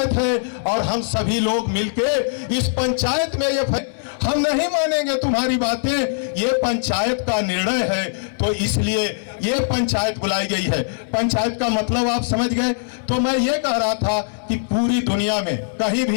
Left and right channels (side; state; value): right; silent; 65 dB below the other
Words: है। और हम सभी लोग मिलके इस पंचायत में ये हम नहीं मानेंगे तुम्हारी बातें, ये पंचायत का निर्णय है, तो इसलिए ये पंचायत बुलाई गई है। पंचायत का मतलब आप समझ गए। तो मैं ये कह रहा था कि पूरी दुनिया में कहीं